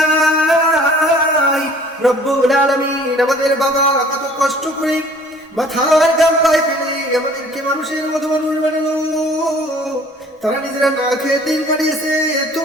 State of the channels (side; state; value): both; normal; correlation 0.52